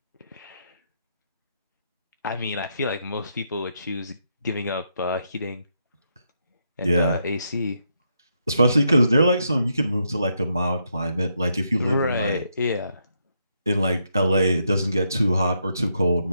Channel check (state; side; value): inverted; both; correlation -0.79